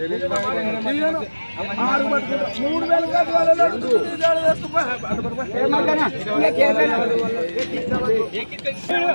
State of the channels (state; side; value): inverted; both; correlation -1.00